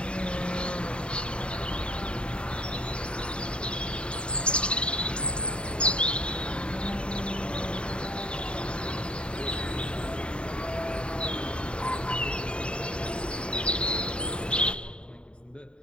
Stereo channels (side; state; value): right; late; 0.054 ms